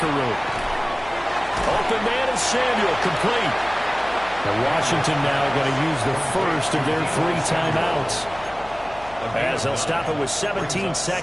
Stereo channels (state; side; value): noise; left; hum, 20 dB below the sound